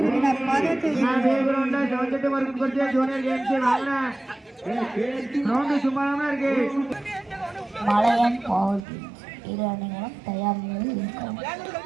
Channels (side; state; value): left; drops out; at 8.8 s